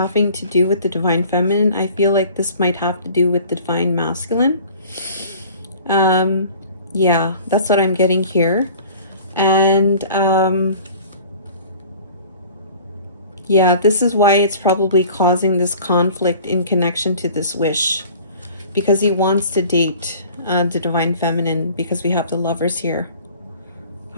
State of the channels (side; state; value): both; inverted; correlation -0.47